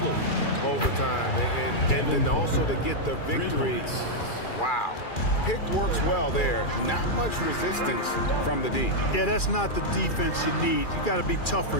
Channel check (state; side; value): late; right; 2.4 ms